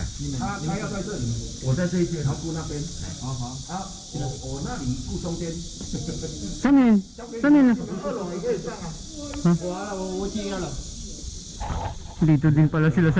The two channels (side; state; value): both; identical; correlation 1.00